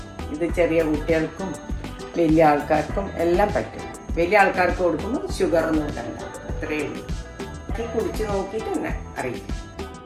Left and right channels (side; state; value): both; identical; correlation 1.00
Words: ഇത് ചെറിയ കുട്ടികൾക്കും വലിയ ആൾക്കാർക്കും എല്ലാം പറ്റും. വലിയ ആൾക്കാർക്ക് കൊടുക്കുമ്പോൾ ഷുഗറൊന്നും ഇടണ്ട, അത്രയേ ഉള്ളൂ. കുടിച്ച് നോക്കിയിട്ട് തന്നെ അറിയിക്കും.